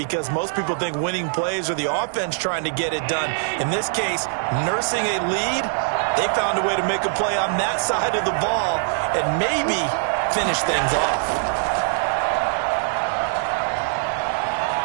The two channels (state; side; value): silent; left; digital silence